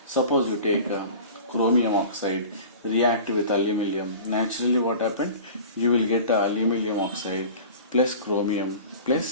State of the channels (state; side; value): inverted; both; correlation -0.39